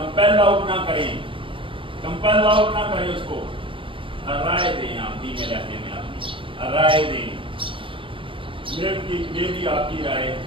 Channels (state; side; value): late; left; 0.25 ms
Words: آؤٹ نہ کریں، کمپیل آؤٹ نہ کریں اس کو، رائے دیں. آپ دھیمے لہجے میں اپنی رائے دیں، میری آپ کی رائے